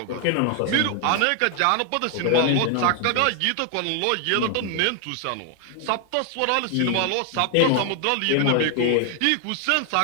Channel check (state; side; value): different; both; correlation 0.00